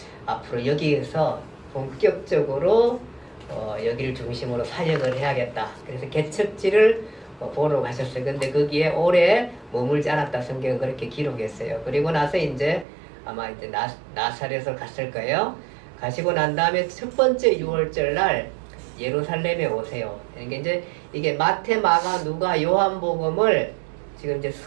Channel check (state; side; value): drops out; left; at 12.9 s